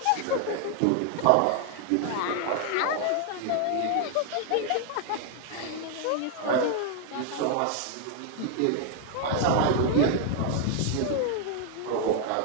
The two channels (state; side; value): different; both; correlation 0.00